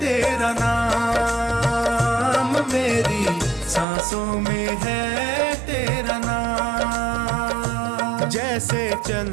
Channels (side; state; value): left; drops out; at 3.9 s